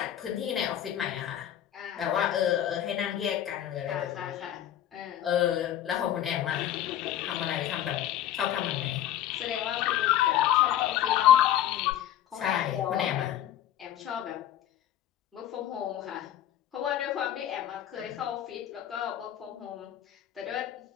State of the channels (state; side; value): quieter; right; 11.6 dB